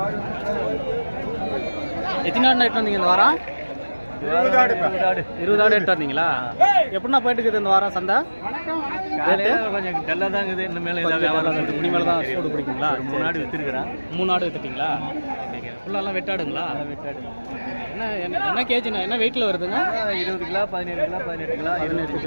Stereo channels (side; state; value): both; inverted; correlation -1.00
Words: எத்தனை ஆடு எட்டு வந்தீங்க இந்த வாரம்? 20 ஆடு எட்டு வந்தீங்களா? எப்படின்னா போயிட்டு இருக்குது இந்த வாரம் சந்தை? கொஞ்சம் டல்லாக தான் இருக்குது. இந்த மேலே முடி மேலே தான் சூடு பிடிக்குங்களா? 3 ஆடு விற்றுருக்குறேன். 3 ஆடு விற்றுட்டிங்களா? ஃபுல்லாலாம் வெட்டாடுங்களா? வெட்டாடு. என்ன கேஜிண்ணா? என்ன வெயிட்டில் வருதுங்க? 20 கிலோ, 17 கிலோ, 18 கிலோ, 18